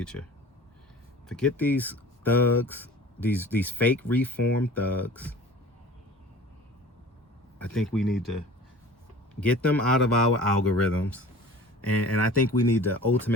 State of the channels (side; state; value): both; normal; correlation 0.42